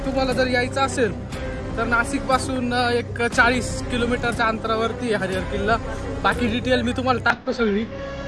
तुम्हाला जर यायचं असेल तर नाशिक पासून एक 40 किलोमीटरच्या अंतरावरती हरिहर किल्ला। बाकी डिटेल मी तुम्हाला टाकतो, सगळी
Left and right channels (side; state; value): both; identical; correlation 1.00